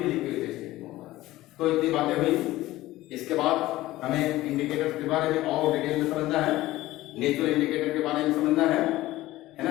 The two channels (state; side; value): quieter; right; 16.8 dB